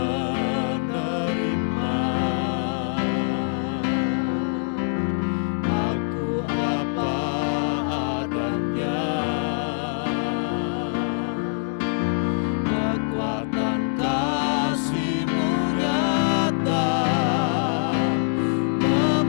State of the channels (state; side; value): silent; right; digital silence